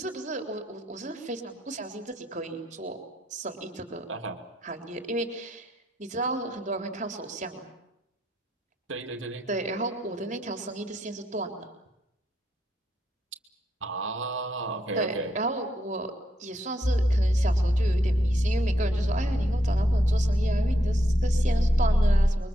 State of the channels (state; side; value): normal; both; correlation 0.79